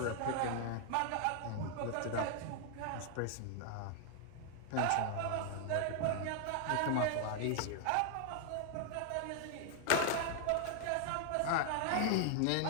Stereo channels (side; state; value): both; different; correlation 0.00